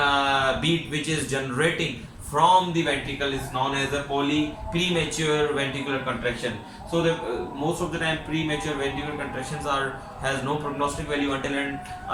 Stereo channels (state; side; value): identical; both; correlation 1.00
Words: beat which is generating from the ventricle is known as a premature ventricular contraction. So the most of the time premature ventricular contractions has no prognostic value